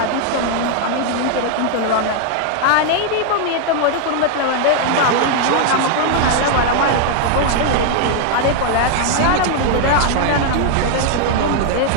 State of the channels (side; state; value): both; different; correlation 0.00